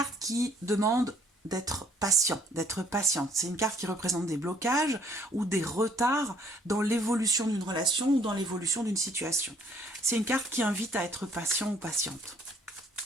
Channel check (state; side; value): normal; both; correlation 0.61